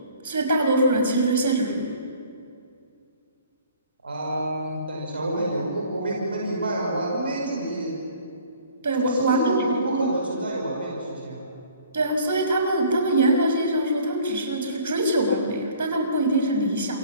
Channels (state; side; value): inverted; both; correlation -0.53